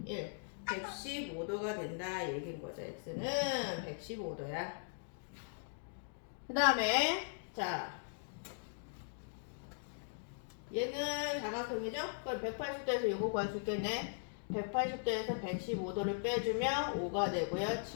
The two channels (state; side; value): silent; right; digital silence